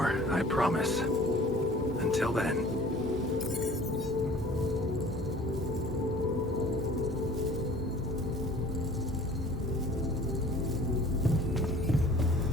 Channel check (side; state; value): both; normal; correlation 0.48